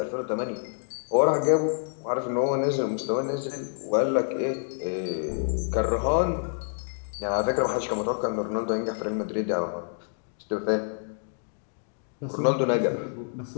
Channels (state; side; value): silent; right; digital silence